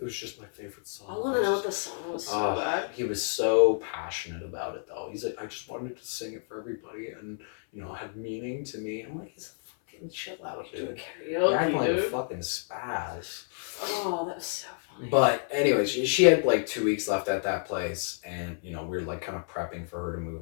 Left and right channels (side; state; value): right; silent; 58 dB below the other